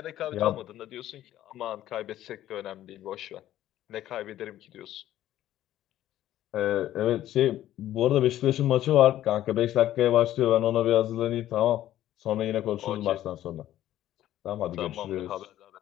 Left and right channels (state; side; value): quieter; right; 13.1 dB